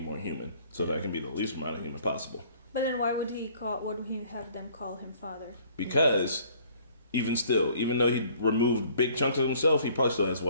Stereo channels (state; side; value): inverted; both; correlation -0.57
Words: human, so that I can be the least amount of human possible. But then why would he have them call him father? Because even though he removed big chunks of himself, he probably still has